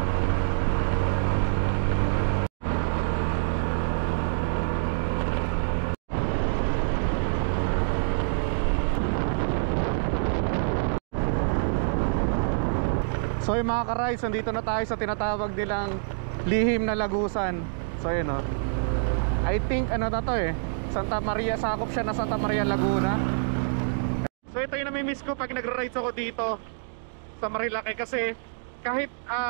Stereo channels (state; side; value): silent; left; digital silence